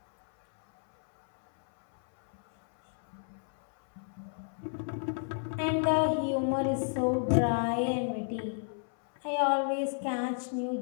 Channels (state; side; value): silent; right; 57 dB below the other